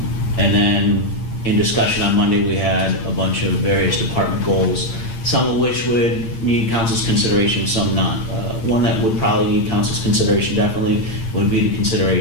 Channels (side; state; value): right; late; 8.8 ms